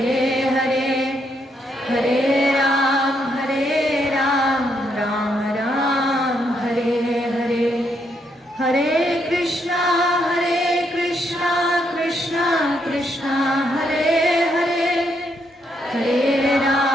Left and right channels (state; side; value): normal; both; correlation 0.76